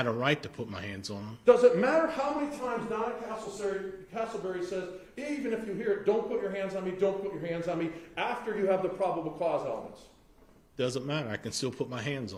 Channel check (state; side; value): identical; both; correlation 1.00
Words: a right to put my hands on them. Does it matter how many times Donna Castleberry says, even if you hear it, don't put your hands on me, don't put your hands on me, after you have the probable cause elements? Doesn't matter. I can still put my hands